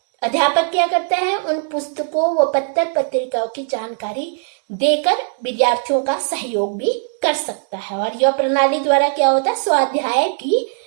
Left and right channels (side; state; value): left; silent; digital silence